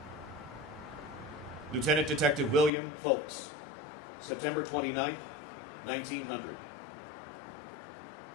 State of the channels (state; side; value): drops out; right; at 2.7 s